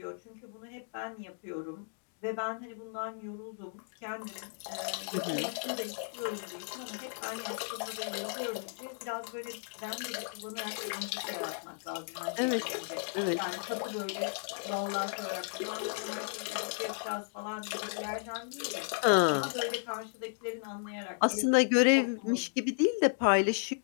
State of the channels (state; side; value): silent; right; digital silence